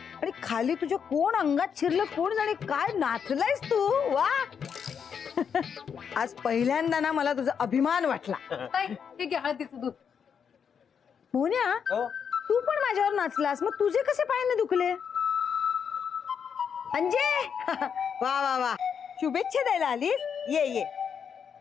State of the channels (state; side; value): quieter; right; 7.1 dB